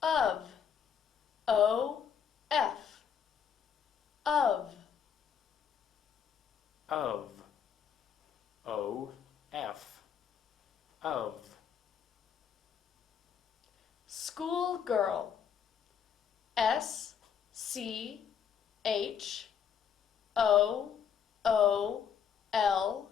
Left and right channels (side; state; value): right; quieter; 7.7 dB